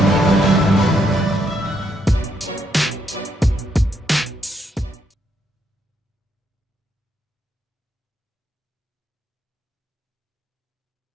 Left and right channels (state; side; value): normal; both; correlation 0.76